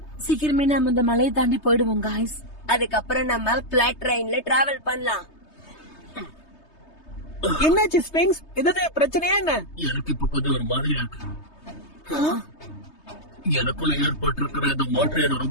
சீக்கிரமே நம்ம இந்த மலையை தாண்டி போயிடுவோம் guys. அதுக்கப்புறம் நம்ம பிளாட் ட்ரெயின்ல டிராவல் பண்ணலாம். என்னாச்சு ஸ்பிங்ஸ்? ஏதாவது பிரச்சனையா என்ன? எனக்கு இப்ப கொஞ்சம் ஒரு மாதிரியா இருக்கு. எனக்குள்ள ஏற்பட்டிருக்கிற இந்த மாற்றம் என்ன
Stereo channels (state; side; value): late; right; 3.2 ms